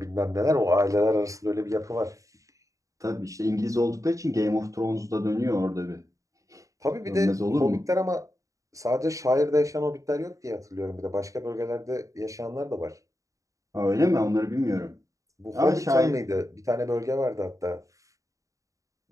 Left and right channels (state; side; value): late; left; 0.16 ms